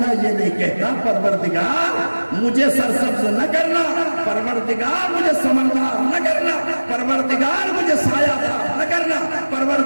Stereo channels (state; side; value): inverted; both; correlation -1.00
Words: یہ نہیں کہتا پروردگار مجھے سرسبز نہ کرنا، پروردگار مجھے سمندار نہ کرنا، پروردگار مجھے سایہ دار نہ کرنا،